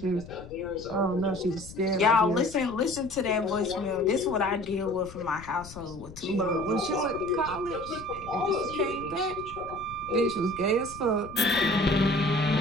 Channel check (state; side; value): noise; left; rumble, 16 dB below the sound